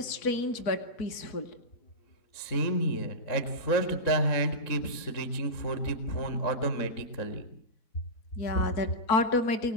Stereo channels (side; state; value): right; late; 3.7 ms